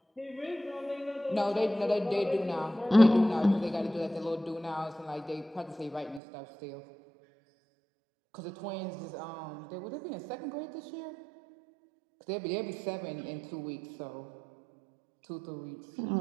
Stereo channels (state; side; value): drops out; left; at 6.2 s